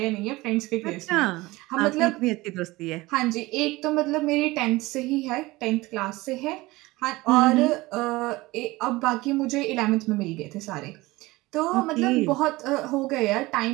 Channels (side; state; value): left; quieter; 20.5 dB